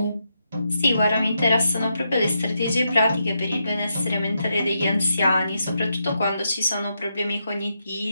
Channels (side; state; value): both; inverted; correlation -0.82